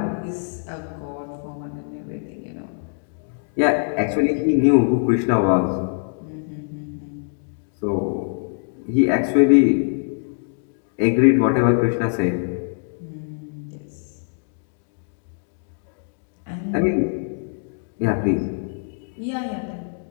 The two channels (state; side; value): silent; right; 63 dB below the other